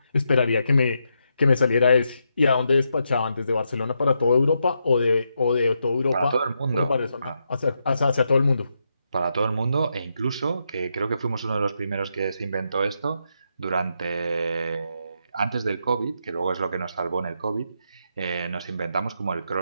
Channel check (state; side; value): inverted; both; correlation -0.82